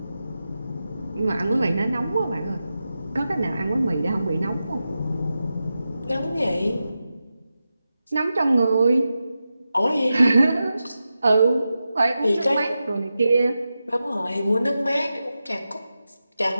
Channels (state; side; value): inverted; both; correlation -0.91